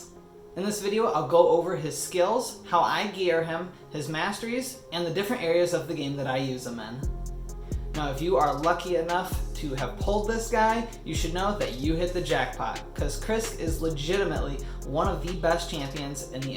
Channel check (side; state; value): both; identical; correlation 1.00